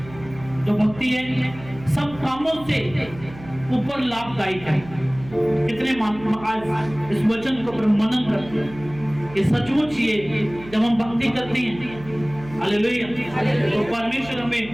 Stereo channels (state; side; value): noise; right; hum, 17 dB below the sound